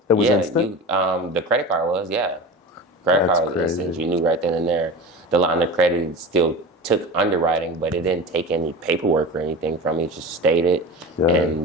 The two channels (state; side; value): normal; both; correlation 0.31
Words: It was instant? The credit card was, yeah. Credit That's card was crazy. instant. You knew right then and there. The line of credit still took underwriting, but it didn't take any paperwork or anything from me. It just stated. Yeah.